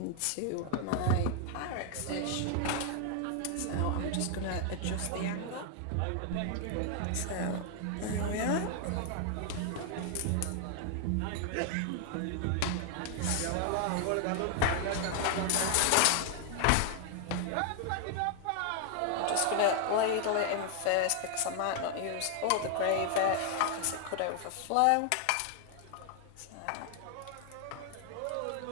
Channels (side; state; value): both; different; correlation 0.00